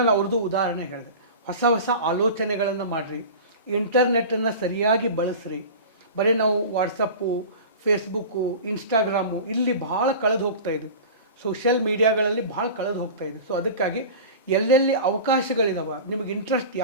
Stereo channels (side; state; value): both; inverted; correlation -0.34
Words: ಅವ್ರದ್ದು ಉದಾಹರಣೆ ಹೇಳಿದೆ. ಹೊಸ ಆಲೋಚನೆಗಳನ್ನು ಮಾಡಿರಿ, ಇಂಟರ್ನೆಟ್ಟನ್ನು ಸರಿಯಾಗಿ ಬಳಸ್ರಿ. ಬರೀ ನಾವು ವಾಟ್ಸಪ್ಪು, ಫೇಸ್ಬುಕ್ಕು, ಇನ್ಸ್ಟಾಗ್ರಾಮು ಇಲ್ಲಿ ಭಾಳ ಕಳೆದು ಹೋಗ್ತಾ ಇದೆ. ಸೋಷಿಯಲ್ ಮೀಡಿಯಾಗಳಲ್ಲಿ ಭಾಳ ಕಳೆದು ಹೋಗ್ತಾ ಇದೆ. ಸೊ ಅದಕ್ಕಾಗಿ ಎಲ್ಲೆಲ್ಲಿ ಅವಕಾಶಗಳಿದಾವೆ, ನಿಮಗೆ ಇಂಟ್ರೆಸ್ಟ್